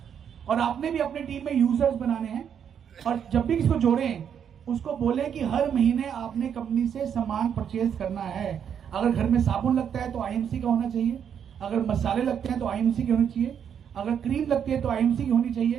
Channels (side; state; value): left; quieter; 8.2 dB